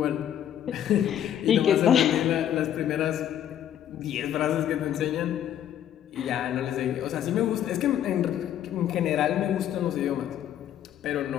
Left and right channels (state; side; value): quieter; right; 10.5 dB